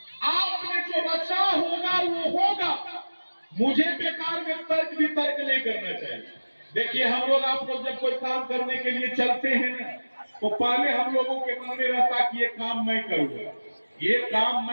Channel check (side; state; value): both; inverted; correlation -1.00